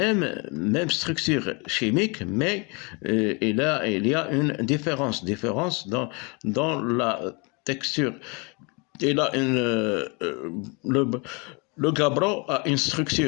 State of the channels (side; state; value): right; quieter; 30.9 dB